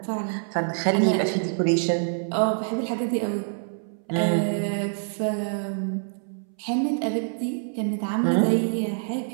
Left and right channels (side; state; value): left; silent; 61 dB below the other